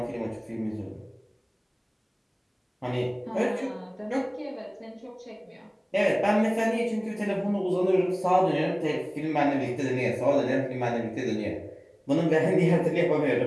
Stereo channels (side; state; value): both; identical; correlation 1.00